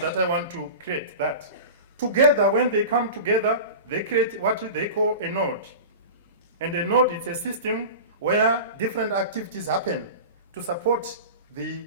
that I want to create, that together, when they come together, they create what they call a node. And a node is a system where different activities happen to support the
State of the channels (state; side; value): inverted; both; correlation -0.31